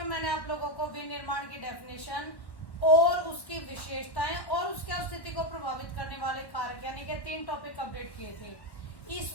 मैंने आप लोगों को विनिर्माण की डेफिनेशन और उसकी विशेषताएं और उसके अस्तित्व को प्रभावित करने वाले कारक यानी कि 3 टॉपिक अपडेट किए थे।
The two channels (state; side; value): late; right; 1.1 ms